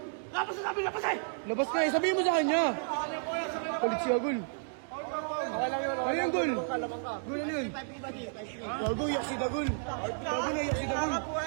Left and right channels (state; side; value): silent; left; digital silence